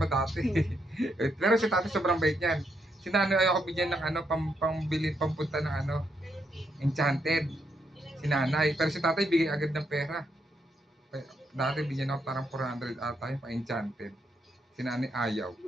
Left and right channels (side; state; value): both; normal; correlation 0.78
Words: dati. Pero si tatay sobrang bait niyan. Si nanay ayoko bigyan ng ano, pambili, pampunta ng ano, enchanted. Si nanay. Pero si tatay bigay agad ng pera. Dati bigyan ako parang 400 ata yung pa-enchanted. Si nanay ayaw.